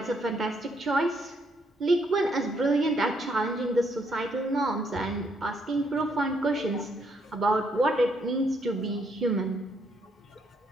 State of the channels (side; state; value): both; normal; correlation 0.73